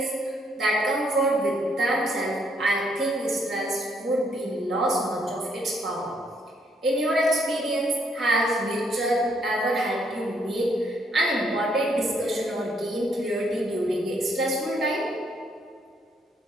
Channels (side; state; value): both; normal; correlation 0.71